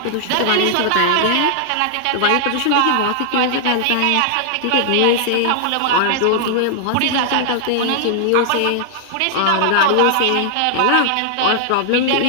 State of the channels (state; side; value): different; both; correlation 0.00